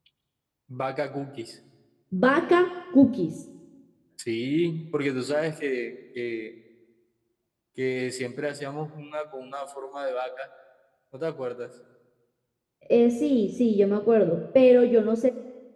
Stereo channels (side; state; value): both; identical; correlation 1.00